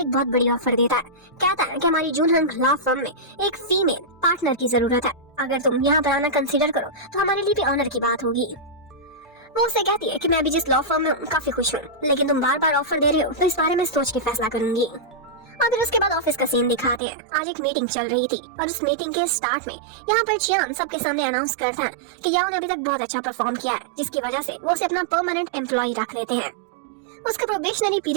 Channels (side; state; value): left; drops out; at 17.0 s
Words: एक बहुत बड़ी ऑफर देता है। कहता है कि हमारी जून हंग लॉ फर्म में एक फीमेल पार्टनर की जरूरत है, अगर तुम यहाँ पर आना कंसीडर करो तो हमारे लिए भी ऑनर की बात होगी। वो उसे कहती है कि मैं भी जिस लॉ फर्म में हूँ काफी खुश हूँ, लेकिन तुम बार बार ऑफर दे रहे हो तो इस बारे में सोच के फैसला करूंगी। और फिर उसके बाद ऑफिस का सीन दिखाते हैं। आज एक मीटिंग चल रही थी और उस मीटिंग के स्टार्ट में यहाँ पर चियान सबके सामने अनाउंस करता है कि याओ ने अभी तक बहुत अच्छा परफॉर्म किया है, जिसकी वजह से वो उसे अपना परमानेंट एम्प्लॉय रख लेते हैं। उसका प्रोबेशनरी